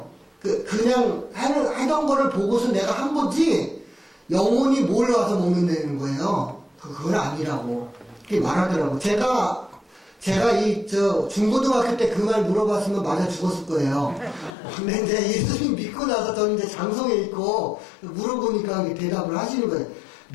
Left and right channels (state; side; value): drops out; right; at 14.6 s